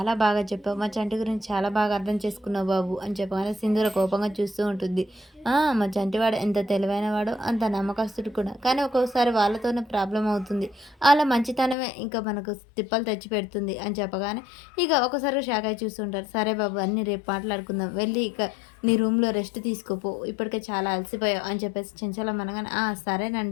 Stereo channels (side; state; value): right; drops out; at 11.8 s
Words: బాగా చెప్పావు. మా చంటి గురించి చాలా బాగా అర్థం చేసుకున్నావు బాబు అని చెప్పగానే సింధూర కోపంగా చూస్తూ ఉంటుంది. మా చంటివాడు ఎంత తెలివైనవాడో అంత నమ్మకస్తుడు కూడా. కానీ ఒక్కోసారి వాళ్ళతోనే ప్రాబ్లమ్ అవుతుంది. అలా మంచితనమే ఇంకా మనకు తిప్పలు తెచ్చి పెడుతుంది అని చెప్పగానే ఇక ఒకసారి షాక్ అయి చూస్తుంటారు. సరే బాబు అన్నీ రేపు మాట్లాడుకుందాం. వెళ్ళి ఇక నీ రూమ్‌లో రెస్ట్ తీసుకోపో. ఇప్పటికే చాలా అలసిపోయావు అని చెప్పేసి చెంచలం అనగానే